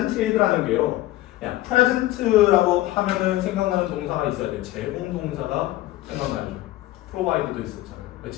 게요. 그냥 present라고 하면은 생각나는 동사가 있어야 돼요. 제공 동사가 생각나죠. provide도 있었잖아요.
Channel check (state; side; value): quieter; right; 16.4 dB